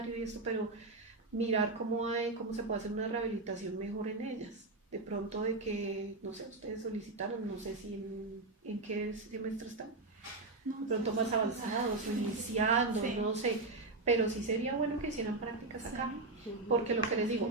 y esto, pero mirar cómo se puede hacer una rehabilitación mejor en ellas. De pronto de que, no sé, ustedes solicitaron, no sé si en qué semestre están, de pronto más avanzados, iniciando, Sí. no sé, pero sí sería bueno que hicieran prácticas acá, porque lo que les digo,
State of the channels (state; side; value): quieter; left; 3.3 dB